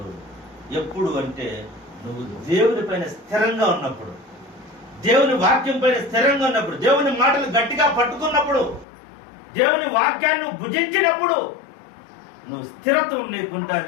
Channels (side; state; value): right; drops out; at 8.8 s